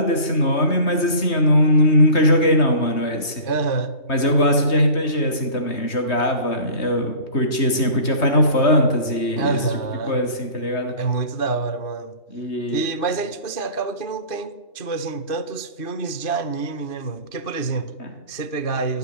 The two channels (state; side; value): late; right; 3.2 ms